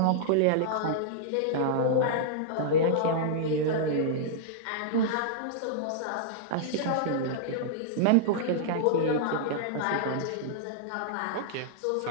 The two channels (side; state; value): both; different; correlation -0.01